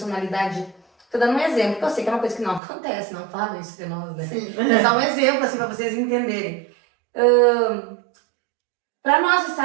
Estou dando um exemplo, que eu sei que é uma coisa que não acontece, não falam isso de nós, né? Sim. É só um exemplo, assim, para vocês entenderem. Para nós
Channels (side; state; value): left; drops out; at 2.6 s